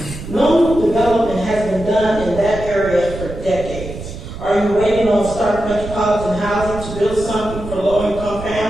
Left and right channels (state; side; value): noise; right; rumble, 10 dB below the sound